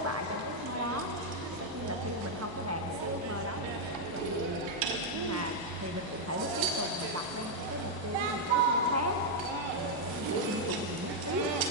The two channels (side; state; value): both; normal; correlation -0.02